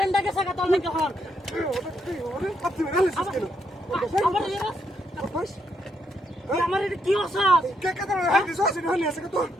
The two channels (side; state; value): both; normal; correlation 0.77